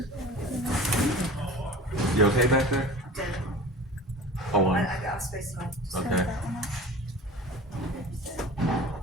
You okay back there? Dead. Hold on. I got space now. Just Okay. turn that one up.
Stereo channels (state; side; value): normal; both; correlation 0.39